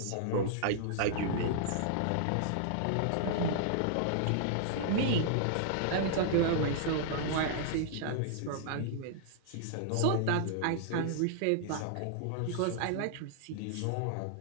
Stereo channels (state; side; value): different; both; correlation -0.01